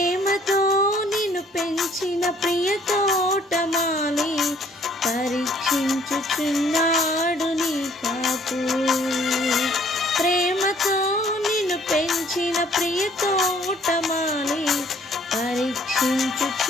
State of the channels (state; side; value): normal; both; correlation 0.60